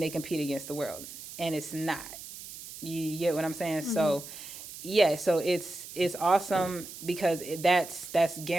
compete against the world. And it's not. You get what I'm saying? So yeah, so it's awesome, because that's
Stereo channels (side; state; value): right; noise; hiss, 13 dB below the sound